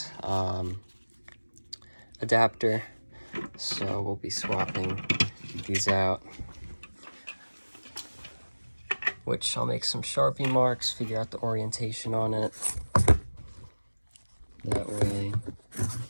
adapter. So we'll be swapping these out, which I'll make some Sharpie marks, figure out the orientation on it. That way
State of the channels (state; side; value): inverted; both; correlation -1.00